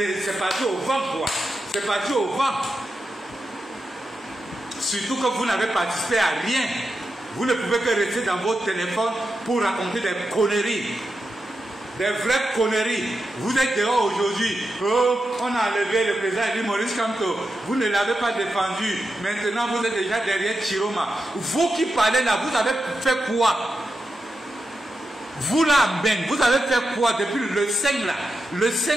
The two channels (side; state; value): both; normal; correlation 0.88